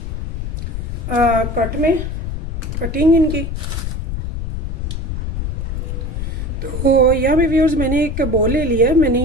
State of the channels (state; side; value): noise; left; rumble, 3 dB below the sound